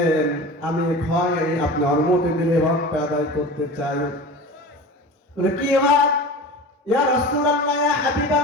আমি আপনি অনুমতি দিলে হকটা আদায় করতে চাই। কি হক? ইয়া রাসূলুল্লাহ, ইয়া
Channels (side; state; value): both; normal; correlation 0.34